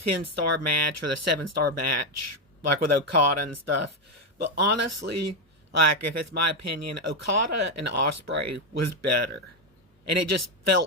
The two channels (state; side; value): normal; both; correlation 0.06